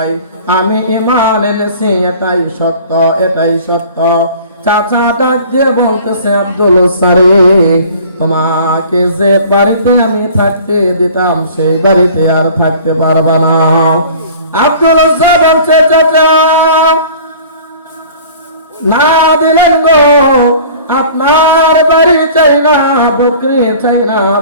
আমি ঈমান এনেছি, এটাই সত্য। চাচা ডাক দিয়ে বলতেছে, আব্দুল সারি, তোমাকে যে বাড়িতে আমি থাকতে দিতাম সেই বাড়িতে আর থাকতে পারবা না। আব্দুল বলছে, চাচা না দিলেন গো, আপনার বাড়ি চাই না, বকরি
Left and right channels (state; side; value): inverted; both; correlation -0.46